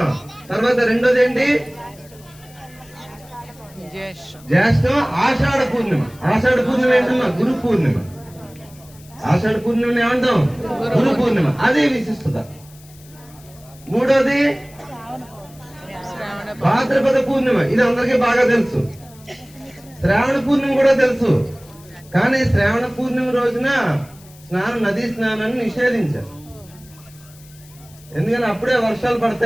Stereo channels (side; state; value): left; noise; hiss, 24 dB below the sound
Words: తర్వాత రెండోది ఏంటి? జ్యేష్ఠం ఆషాఢ పూర్ణిమ. ఆషాఢ పూర్ణిమ ఏంటమ్మా? గురు పూర్ణిమ. ఆషాఢ పూర్ణిమని ఏమంటాం? గురు పూర్ణిమ. అదే విశిష్టత. మూడోది భాద్రపద పూర్ణిమ. ఇది అందరికీ బాగా తెలుసు. శ్రావణ పూర్ణిమ కూడా తెలుసు. కానీ శ్రావణ పూర్ణిమ రోజున నదీ స్నానాన్ని నిషేధించారు. ఎందుకంటే అప్పుడే వర్షాలు